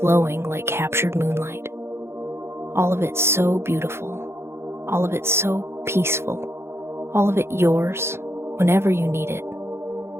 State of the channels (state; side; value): late; left; 0.12 ms